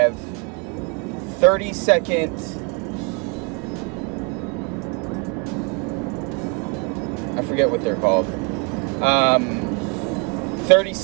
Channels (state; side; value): quieter; left; 31.4 dB